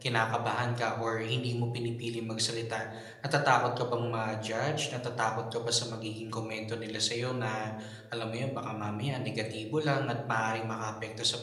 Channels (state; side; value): identical; both; correlation 1.00